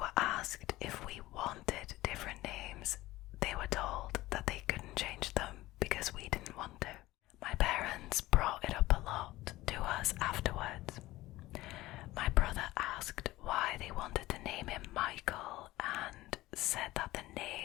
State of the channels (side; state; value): right; quieter; 17.6 dB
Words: asked if we wanted different names, they were told that they couldn't change them because we didn't want to. My parents brought it up a lot to us afterwards. My brother asked why they wanted to name him Michael and said that the